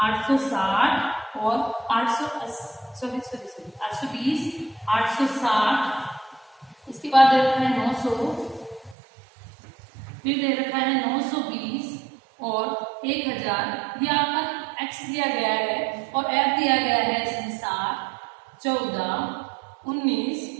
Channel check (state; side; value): drops out; left; at 9.0 s